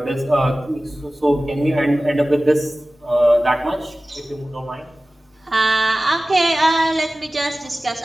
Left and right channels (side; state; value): both; normal; correlation 0.97